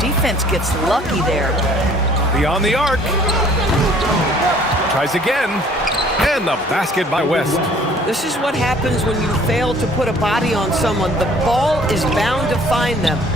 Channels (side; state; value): both; normal; correlation 0.55